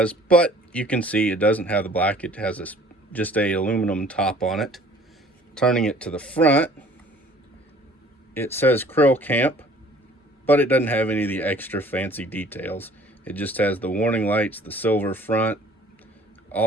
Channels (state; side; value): normal; both; correlation 0.52